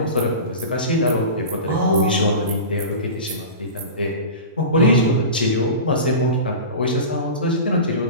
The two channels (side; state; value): both; inverted; correlation -0.31